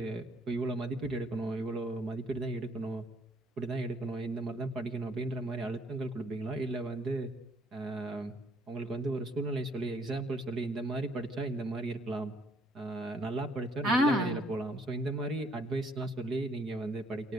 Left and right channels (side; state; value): both; normal; correlation 0.65